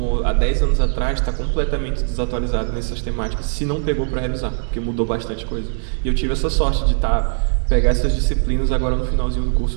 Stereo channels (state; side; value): silent; left; digital silence